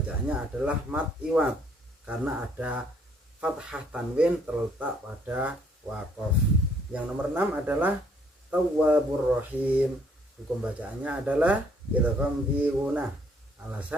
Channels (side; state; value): both; normal; correlation 0.65